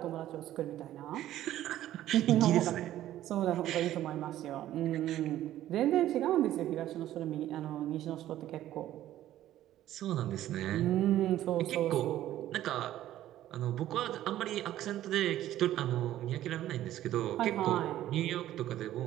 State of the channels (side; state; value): left; quieter; 13.2 dB